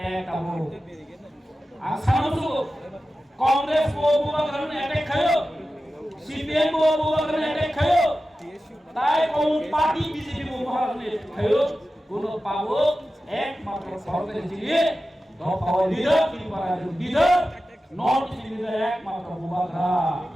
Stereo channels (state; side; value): normal; both; correlation 0.94